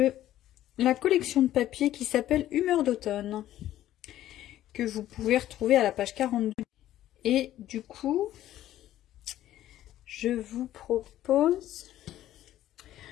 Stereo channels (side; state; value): right; quieter; 13.2 dB